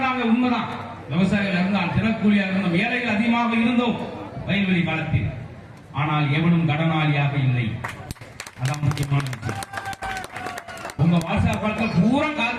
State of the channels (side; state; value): both; identical; correlation 1.00